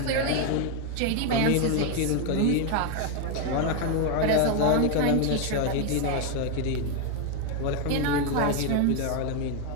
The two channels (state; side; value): different; both; correlation 0.01